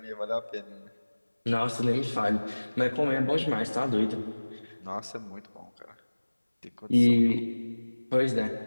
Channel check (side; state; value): both; inverted; correlation -1.00